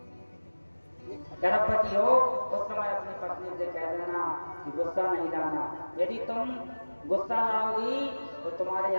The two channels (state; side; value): inverted; both; correlation -1.00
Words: गर्भवती हो उस समय अपनी पत्नी से कह देना कि गुस्सा नहीं लाना, यदि तुम गुस्सा लाओगी तो तुम्हारे